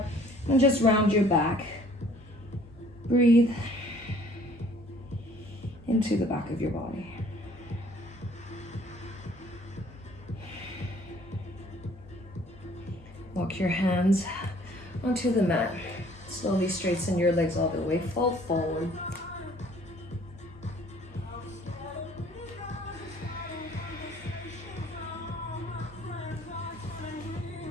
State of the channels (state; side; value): normal; both; correlation 0.56